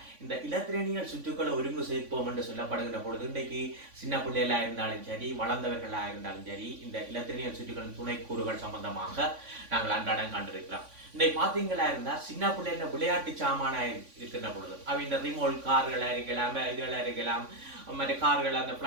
இந்த இலத்திரனியல் சுற்றுக்களை ஒருங்கு சேர்ப்போம் என்று சொல்லப்படுகின்ற பொழுது இன்றைக்கு சின்ன பிள்ளைகளா இருந்தாலும் சரி, வளர்ந்தவர்களா இருந்தாலும் சரி, இந்த இலத்திரனியல் சுற்றுக்களின் துணைக்கூறுகள் சம்பந்தமாக நாங்கள் அன்றாடம் கண்டிருக்கிறோம். இன்றைக்கு பார்த்தீங்களா இருந்தா சின்ன பிள்ளைல விளையாட்டு சாமானா இருக்கின்ற பொழுது இந்த ரிமோட் கார்களா இருக்கலாம், இதெல்லாம் இருக்கலாம், மற்ற கார்கள், அந்த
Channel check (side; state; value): left; late; 3.5 ms